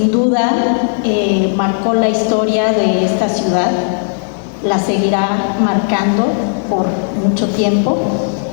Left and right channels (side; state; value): right; silent; digital silence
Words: duda marcó la historia de esta ciudad, la seguirá marcando por mucho tiempo,